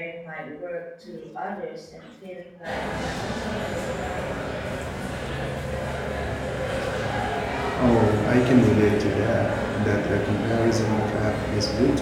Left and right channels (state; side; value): identical; both; correlation 1.00